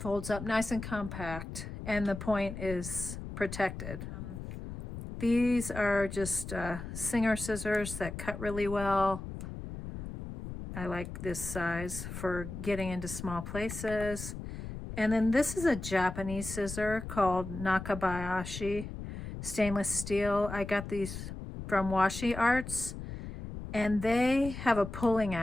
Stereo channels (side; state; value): left; noise; rumble, 9 dB below the sound